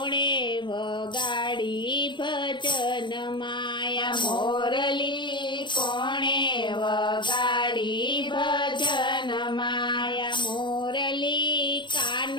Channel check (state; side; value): late; right; 0.22 ms